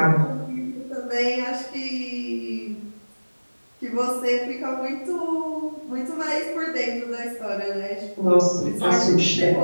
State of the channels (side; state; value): both; inverted; correlation -1.00